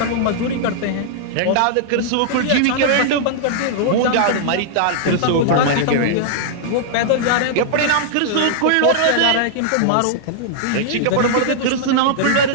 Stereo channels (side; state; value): both; different; correlation -0.01